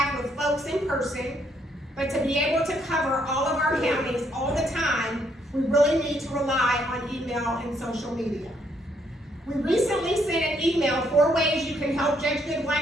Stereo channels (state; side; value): normal; both; correlation 0.71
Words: with folks in person, but to be able to cover all of our counties all the time, we really need to rely on email and social media. We recently sent an email 4 ways you can help Judge